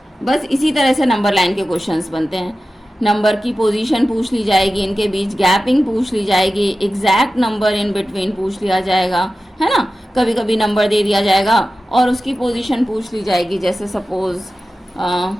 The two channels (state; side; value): normal; both; correlation 0.94